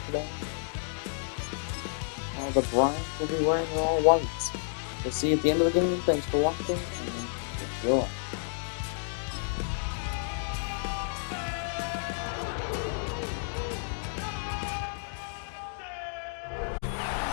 today. While the Browns will be wearing their all whites. We'll see you at the end of the game. Thanks for watching, and enjoy.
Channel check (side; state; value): right; silent; 57 dB below the other